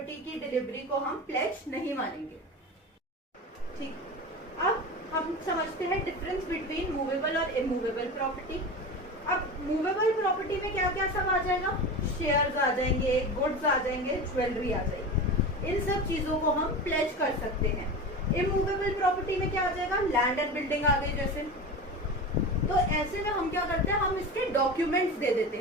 की डिलीवरी को हम प्लेज नहीं मानेंगे। ठीक, अब हम समझते हैं डिफरेंस बिटवीन मूवेबल और इमूवेबल प्रॉपर्टी। अब मूवेबल प्रॉपर्टी में क्या क्या सब आ जाएगा, शेयर्स आ जाएंगे, गुड्स आ जाएंगे, ज्वेलरी आ जाएगी। इन सब चीजों को हम प्लेज कर सकते हैं। इमूवेबल प्रॉपर्टी में क्या आ जाएगा, लैंड एंड बिल्डिंग आ गई जैसे। तो ऐसे में हम क्या करते हैं, हम इसके डॉक्यूमेंट्स दे देते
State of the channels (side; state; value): both; normal; correlation 0.28